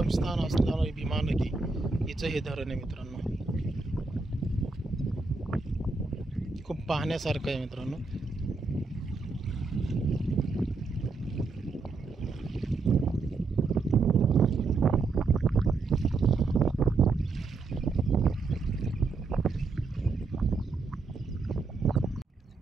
असणारी भीमा नदी हिचं हे धरण आहे मित्रांनो। खूप पाहण्यासारखं आहे मित्रांनो।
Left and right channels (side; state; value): left; quieter; 4.1 dB